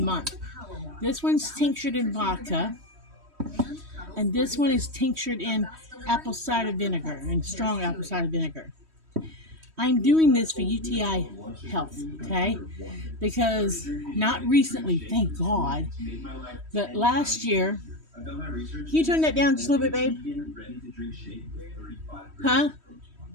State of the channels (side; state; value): left; late; 3.1 ms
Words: month. This one's tinctured in vodka, and this one is tinctured in apple cider vinegar, and strong apple cider vinegar. I'm doing this for UTI health, okay? Because not recently, thank God, but last year. Can you turn that down just a little bit, babe? Huh?